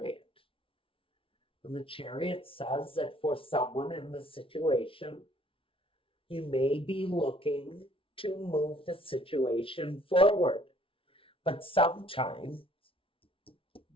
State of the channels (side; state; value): right; late; 0.26 ms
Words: And the Chariot says that for someone in the situation, you may be looking to move the situation forward. But sometimes